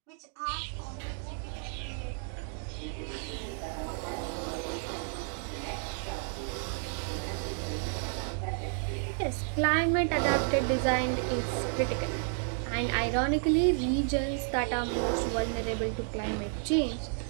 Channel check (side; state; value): left; silent; 57 dB below the other